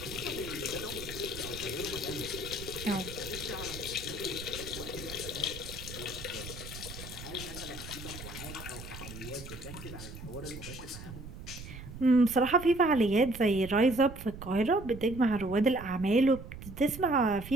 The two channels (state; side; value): noise; right; rumble, 12 dB below the sound